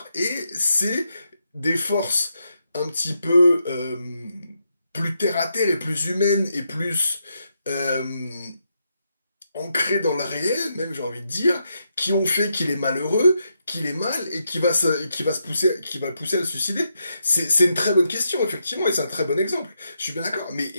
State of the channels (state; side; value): inverted; both; correlation -0.82